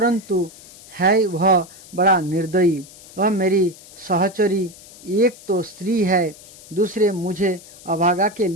है वह बड़ा निर्दयी। वह मेरी सहचरी एक तो स्त्री है, दूसरे मुझे अभागा के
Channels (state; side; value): noise; left; hiss, 20 dB below the sound